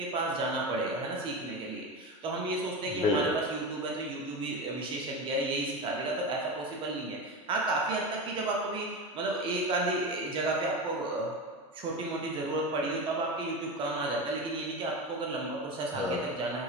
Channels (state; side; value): normal; both; correlation 0.22